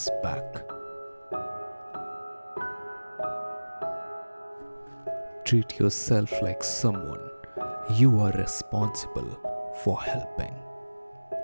back. Treat yourself like someone you are responsible for helping.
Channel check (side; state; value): both; inverted; correlation -1.00